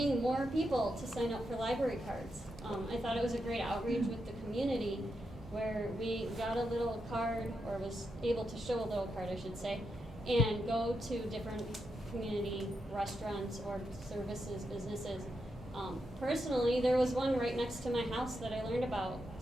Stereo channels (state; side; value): normal; both; correlation 0.85